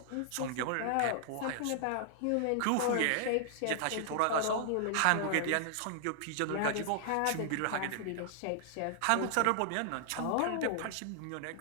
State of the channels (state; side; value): different; both; correlation 0.00